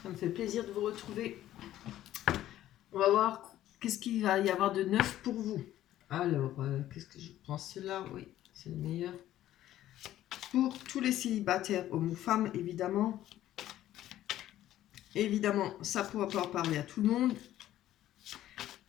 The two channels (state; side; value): quieter; right; 13.2 dB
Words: Ça me fait plaisir de vous retrouver. On va voir qu'est-ce qu'il va y avoir de neuf pour vous. Alors, qu'est-ce que je prends? Celui-là, oui, c'est le meilleur. Pour tous les célibataires, hommes ou femmes, évidemment. Évidemment, ça pourra pas parler à tout le monde.